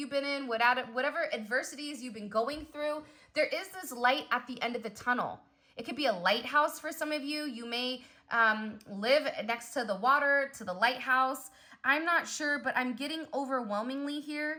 been in, whatever adversities you've been going through, there is this light at the end of the tunnel. It could be a lighthouse for some of you. You may live next to the water, to the lighthouse. I'm not sure, but I'm getting overwhelmingly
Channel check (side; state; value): both; identical; correlation 1.00